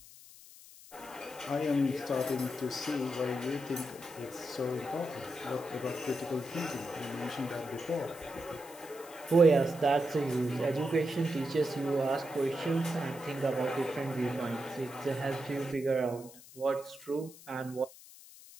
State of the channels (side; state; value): left; noise; hiss, 19 dB below the sound